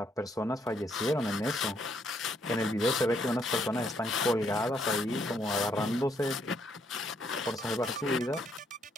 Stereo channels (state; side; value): normal; both; correlation 0.72